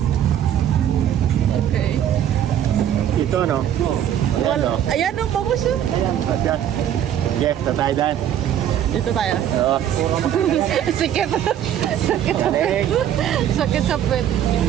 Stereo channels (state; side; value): quieter; left; 10.4 dB